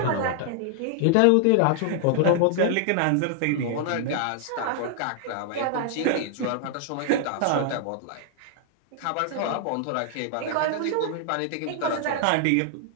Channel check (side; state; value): both; different; correlation 0.00